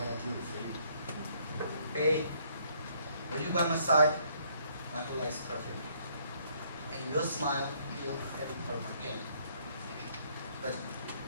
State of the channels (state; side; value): inverted; both; correlation -0.66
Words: gonna do for you. Babe, when you by my side, my whole life is perfect. And your smile heals every part of my pain. But